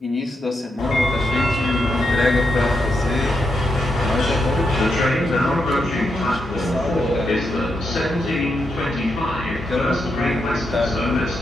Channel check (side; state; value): both; normal; correlation 0.84